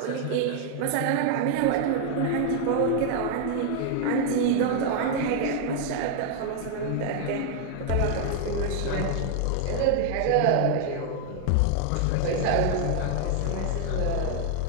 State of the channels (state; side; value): different; both; correlation 0.00